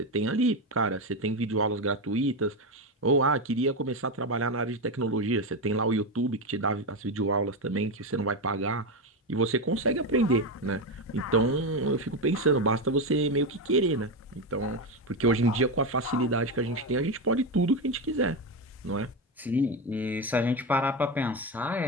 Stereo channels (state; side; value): normal; both; correlation 0.13